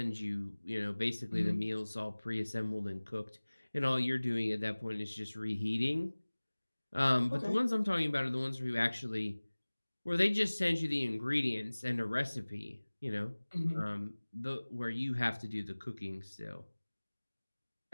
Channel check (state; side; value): inverted; both; correlation -1.00